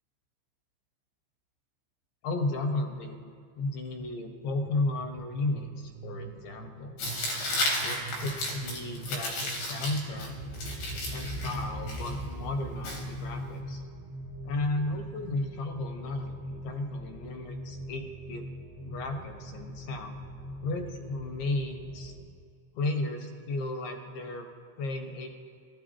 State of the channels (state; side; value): late; right; 15 ms